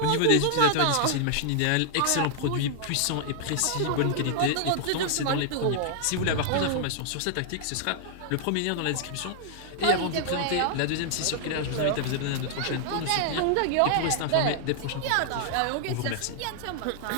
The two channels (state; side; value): different; both; correlation -0.01